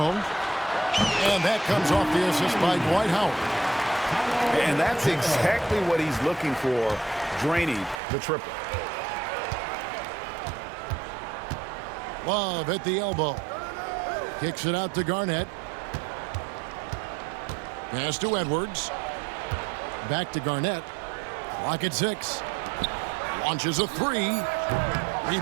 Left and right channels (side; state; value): left; drops out; at 8.0 s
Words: And that comes off the assist by Dwight Howard. And that's exactly what he's looking for, draining the triple. Love at the elbow. Kicks it out to Garnett. Pass to Edwards. Back to Garnett. Clock at 6. Launches a three.